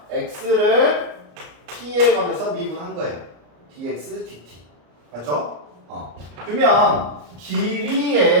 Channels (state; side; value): late; left; 34 ms